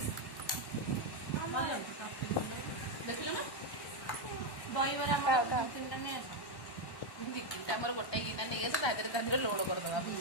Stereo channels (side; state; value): right; late; 1.1 ms